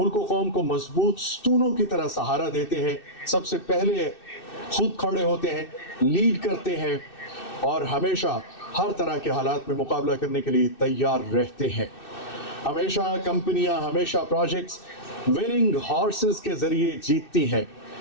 और कौम को मजबूत स्तूनों की तरह सहारा देते हैं, सबसे पहले खुद खड़े होते हैं, लीड करते हैं और हमेशा हर तरह के हालात में मुकाबला करने के लिए तैयार रहते हैं। हमेशा कंपनियां, हमेशा प्रोजेक्ट्स विनिंग हॉर्सेस के जरिए जीतती हैं।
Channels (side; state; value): right; late; 2.6 ms